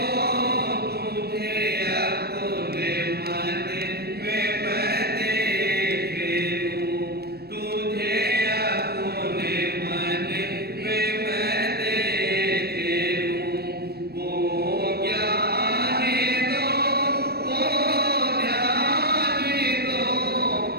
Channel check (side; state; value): left; late; 0.47 ms